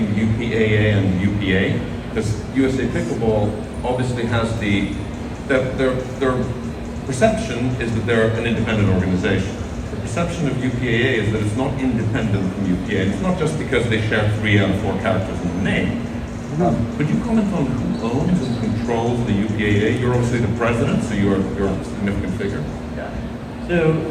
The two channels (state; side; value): identical; both; correlation 1.00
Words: UPA-A and UPA, because USA Pickleball obviously has their perception is that they're an independent organization. The perception of UPA-A is that it's not independent from UPA, and it's not just because they share 3 out of 4 characters in the name. Could you comment on who owns and controls the UPA-A? You're obviously the president, so you're a significant figure. Yeah. So